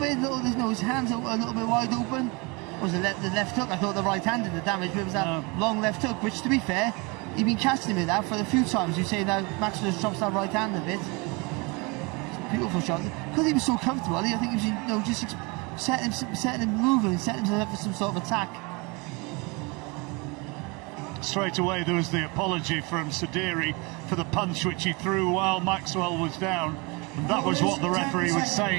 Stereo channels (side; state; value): left; quieter; 28.2 dB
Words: His hands are a little bit wide open. Was the left hook? I thought the right hand did the damage, but it was that long left hook, which, to be fair, he'd been casting him with that for a few times. You say that Maxwell just drops that right hand a bit. Beautiful shot. Because he was so comfortable, I think he was, just setting him moving and setting himself up for some sort of attack. Straight away there was the apology from Sadiri for the punch which he threw while Maxwell was down. And that was what the referee was